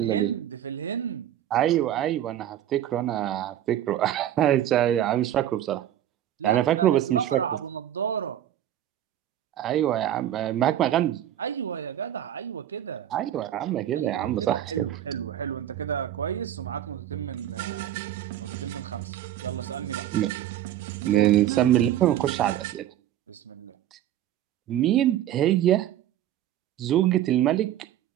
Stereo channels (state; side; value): quieter; left; 11.7 dB